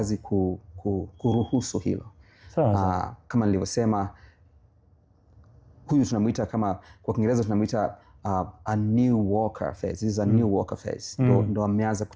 kuruhusu hilo. Kama nilivyosema, huyu tunamuita, kama kwa Kiingereza tunamuita a new walker phase. This is a new walker phase. Ndo ameanza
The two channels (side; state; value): both; identical; correlation 1.00